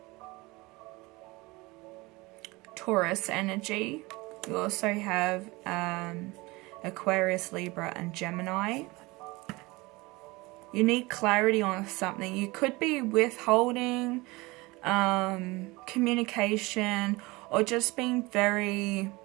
Taurus energy. You also have Aquarius, Libra, and Gemini. You need clarity on something. You could be withholding communication, or just being very,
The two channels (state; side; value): quieter; left; 22.9 dB